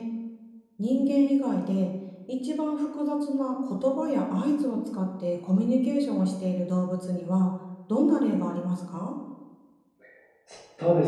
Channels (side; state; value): both; identical; correlation 1.00